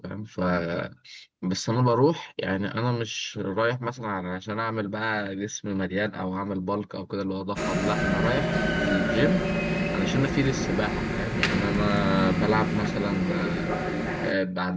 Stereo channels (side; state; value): both; identical; correlation 1.00